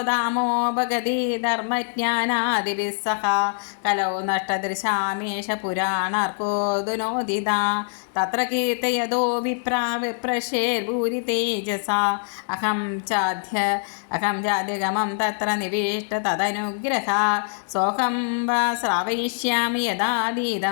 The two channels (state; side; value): silent; right; digital silence